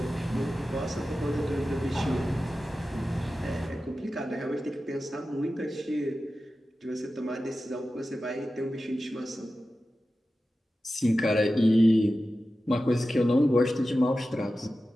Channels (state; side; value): normal; both; correlation 0.93